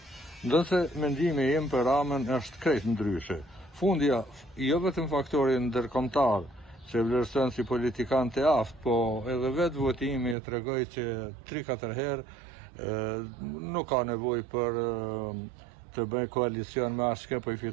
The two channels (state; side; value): drops out; left; at 10.4 s